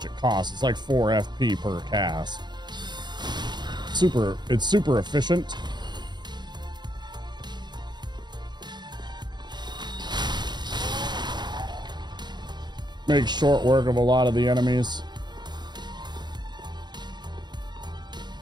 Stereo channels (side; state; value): left; late; 0.21 ms